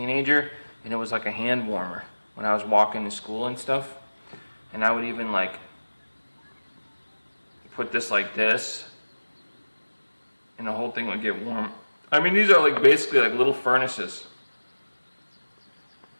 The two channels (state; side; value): inverted; both; correlation -1.00